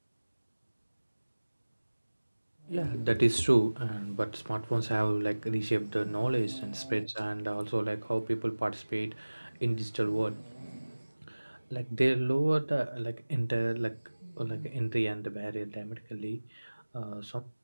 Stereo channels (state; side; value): inverted; both; correlation -1.00